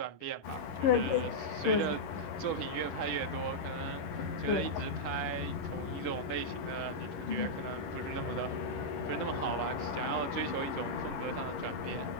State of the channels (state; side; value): late; right; 11 ms